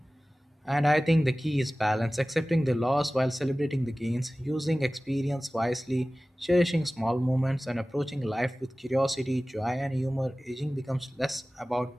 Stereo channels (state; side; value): normal; both; correlation 0.97